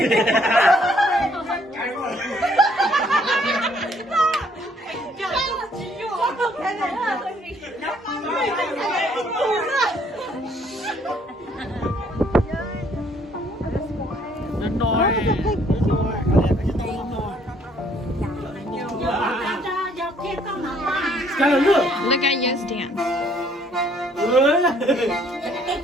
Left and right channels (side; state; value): both; normal; correlation 0.64